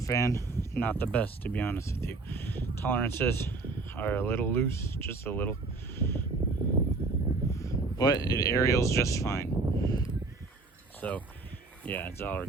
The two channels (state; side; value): quieter; left; 3.8 dB